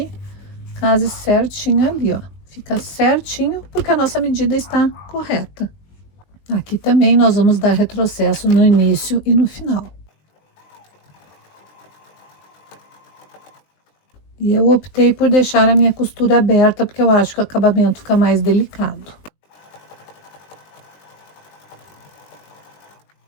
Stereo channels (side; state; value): right; late; 20 ms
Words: case certinho ali, ó. Fica certinho, porque a nossa medida está correta. Aqui também nós vamos dar retrocesso no início e no final. E eu optei por deixar a minha costura aberta, porque eu acho que o acabamento fica mais delicado.